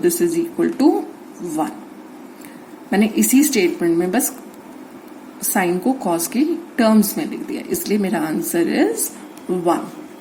is equal to 1। मैंने इसी स्टेटमेंट में बस साइन को कॉस की टर्म्स में लिख दिया, इसलिए मेरा answer is 1।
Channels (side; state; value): both; identical; correlation 1.00